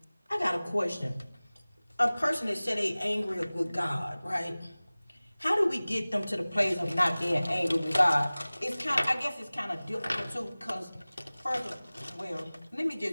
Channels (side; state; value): both; inverted; correlation -0.99